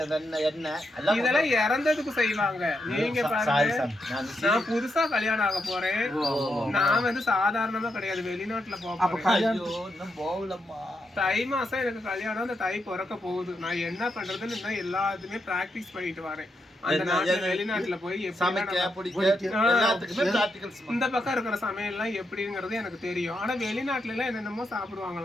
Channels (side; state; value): both; normal; correlation 0.82